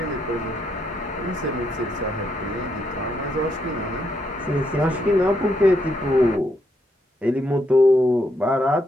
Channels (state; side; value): normal; both; correlation 0.77